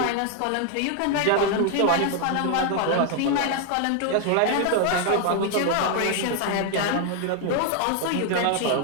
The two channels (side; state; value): both; different; correlation 0.00